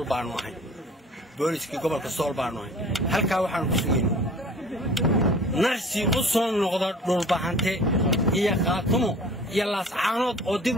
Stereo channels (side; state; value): both; normal; correlation 0.46